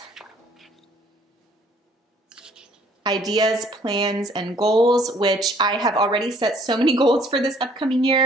Ideas, plans, and goals, which I have already set so many goals for this upcoming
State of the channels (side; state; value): both; normal; correlation 0.60